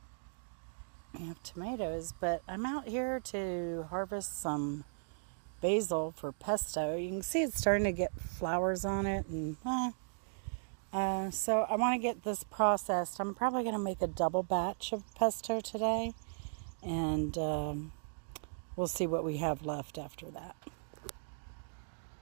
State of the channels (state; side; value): silent; left; digital silence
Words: we have tomatoes, but I'm out here to harvest some basil for pesto. You can see it's starting to get flowers on it, and so I want to get this processed. I'm probably going to make a double batch of pesto today, and we'll see what we have left after that.